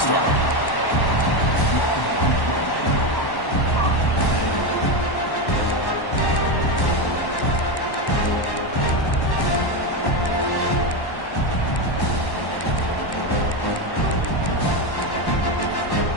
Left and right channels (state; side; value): late; right; 1.1 ms